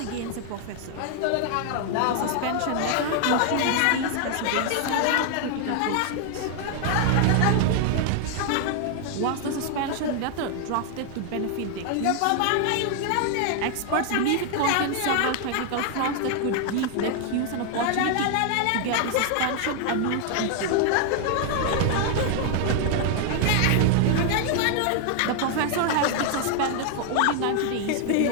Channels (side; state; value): both; different; correlation 0.00